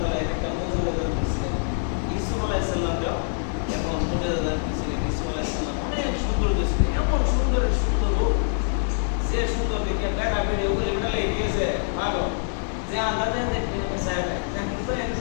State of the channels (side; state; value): right; silent; digital silence